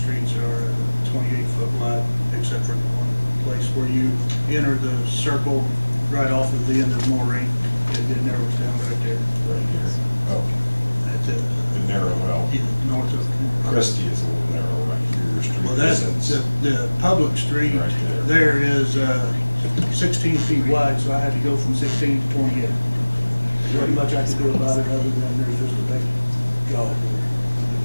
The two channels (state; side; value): inverted; both; correlation -1.00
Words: are 28-foot wide, except for the one place where you enter the circle right off of the end of Moraine, it narrows down right there. Right here. Oh, That's it. the narrow, well, Yeah, north of. Christie is a little narrow right here. Your street Well, that's, isn't. the public street Right there is 16 feet wide, so I had to go from 16 to 28. There's not much I could do about it other than there's just a big gully there.